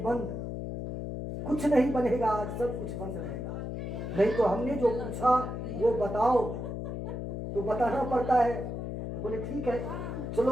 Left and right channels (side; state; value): left; noise; hum, 5 dB below the sound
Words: कुछ नहीं बनेगा, आज सब कुछ बंद रहेगा। नहीं तो हमने जो पूछा वो बताओ तो बताना पड़ता है। तो बोले ठीक है